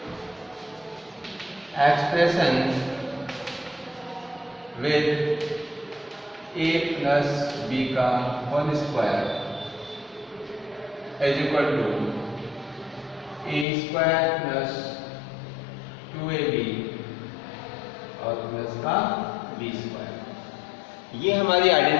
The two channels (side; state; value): right; drops out; at 13.7 s